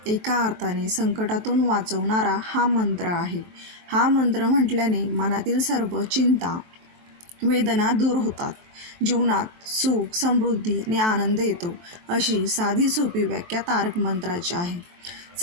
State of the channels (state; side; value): late; left; 23 ms